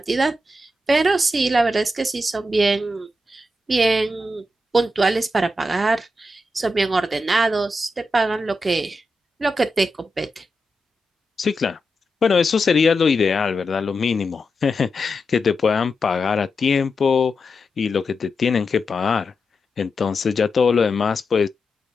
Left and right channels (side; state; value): both; normal; correlation 0.88